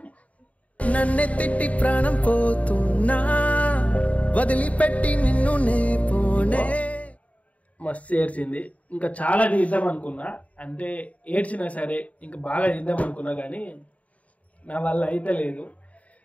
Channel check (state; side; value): late; right; 0.068 ms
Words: నన్నే తిట్టి ప్రాణం పోతున్నా, వదిలిపెట్టి నిన్ను నే పోనే. మస్తు ఏడ్చింది. ఇంకా చాలా తీద్దాం అనుకున్నా, అంటే ఏడ్చినా సరే ఇంకా బాగా తీద్దాం అనుకున్నా, కానీ నా వల్ల అయితే లేదు.